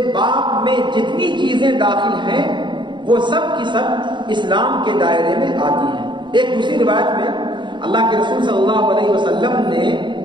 باب میں جتنی چیزیں داخل ہیں وہ سب کی سب اسلام کے دائرے میں آتی ہیں۔ ایک دوسری روایت میں اللہ کے رسول صلی اللہ علیہ وسلم نے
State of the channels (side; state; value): left; late; 0.23 ms